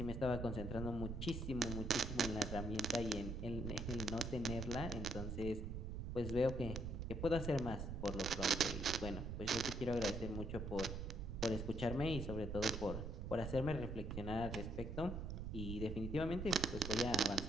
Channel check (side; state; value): right; noise; rumble, 5 dB below the sound